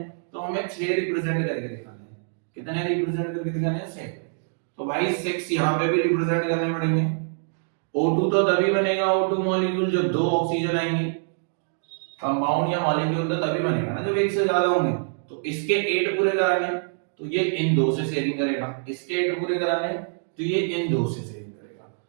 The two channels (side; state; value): left; silent; digital silence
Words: तो हमें 6 रिप्रेजेंट करके दिखाने हैं। कितने रिप्रेजेंट करके दिखाने हैं, 6। तो भाई 6 यहां पे भी रिप्रेजेंट करने पड़ेंगे। O2 तो तभी बनेगा O2 मॉलिक्यूल जब 2 ऑक्सीजन आएंगे, कंपाउंड या मॉलिक्यूल तो तभी बनेगा ना जब एक से ज्यादा होंगे। तो इसके 8 पूरे कराने, तो ये इन दो से शेयरिंग करेगा, इसके 8 पूरे कराने, तो ये इन दो से शेयरिंग करेगा।